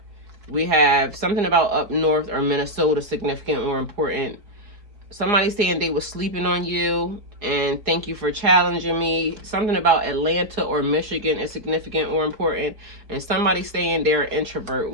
We have something about up north or Minnesota, significant or important. Somebody saying they were sleeping on you and thank you for challenging me. Something about Atlanta or Michigan is significant or important. And somebody saying they're an introvert,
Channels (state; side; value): late; left; 4.4 ms